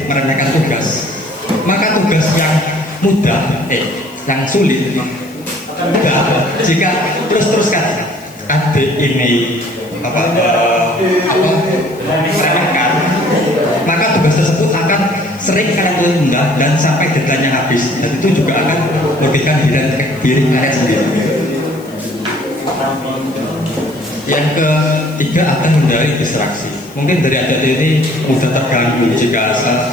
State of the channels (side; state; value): left; noise; hiss, 24 dB below the sound